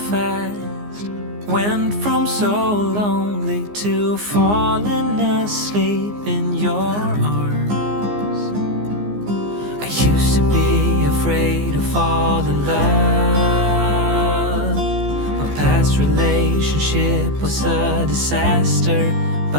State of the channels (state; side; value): late; left; 15 ms